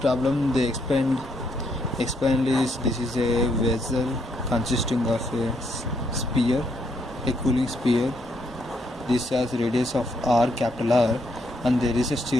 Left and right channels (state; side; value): normal; both; correlation 0.74